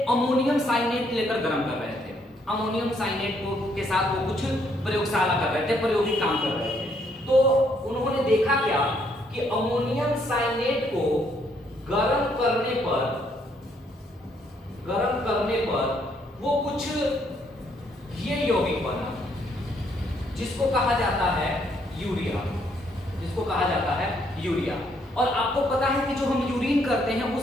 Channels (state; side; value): normal; both; correlation 0.70